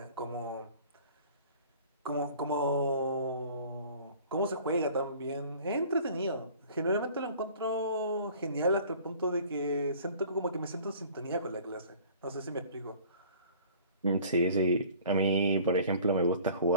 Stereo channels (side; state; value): both; inverted; correlation -0.49